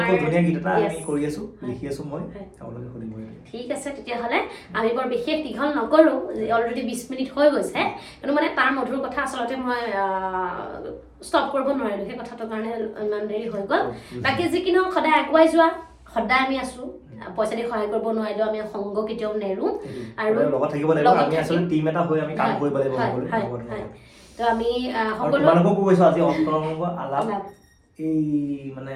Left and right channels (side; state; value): both; identical; correlation 1.00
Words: খুব ধুনীয়া গীত এটা আমি কৰি আছোঁ, লিখি আছোঁ মই, আপোনালোকে শুনিব। ঠিক আছে, তেতিয়াহ'লে আমি বৰ বিশেষ দীঘল নকৰোঁ, অলৰেডি 20 মিনিট হৈ গৈছে, কিন্তু মানে তাৰ মধুৰ কথা আচলতে মই ষ্টপ কৰিব নোৱাৰিলোঁ, সেই কথাটোৰ কাৰণে ইমান দেৰি হৈ গ'ল। বাকী যি কি নহওক সদায় আগুৱাই যোৱা, সদায় আমি আছোঁ, পইচা দি সহায় কৰিব নোৱাৰিলেও আমি সংগ কেতিয়াও নেৰোঁ আৰু লগত থাকিব লাগিব, আমি আচলতে টিম এটা হৈ আমি কাম কৰিব লাগিব। তো আমি সকলোকো কৈছোঁ আজি অন্তৰংগ আলাপ এই মানে